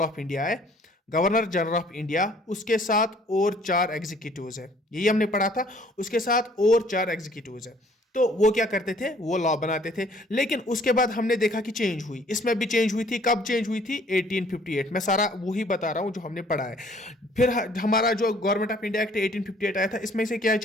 ऑफ इंडिया है, गवर्नर जनरल ऑफ इंडिया, उसके साथ और 4 एग्जीक्यूटिव्स है, यही हमने पढ़ा था। उसके साथ और 4 एग्जीक्यूटिव्स है। तो वो क्या करते थे? वो लॉ बनाते थे। लेकिन उसके बाद हमने देखा कि चेंज हुई, इसमें भी चेंज हुई थी। कब चेंज हुई थी? 1858 में। सारा वही बता रहा हूं जो हमने पढ़ा है। फिर हमारा जो गवर्नमेंट ऑफ इंडिया एक्ट 1858 आया था, इसमें से क्या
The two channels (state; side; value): normal; both; correlation 0.58